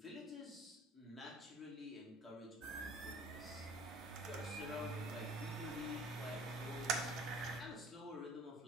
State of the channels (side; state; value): both; normal; correlation 0.49